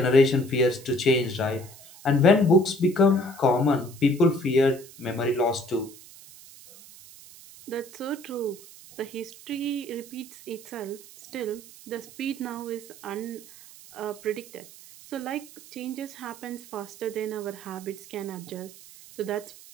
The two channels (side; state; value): right; noise; hiss, 19 dB below the sound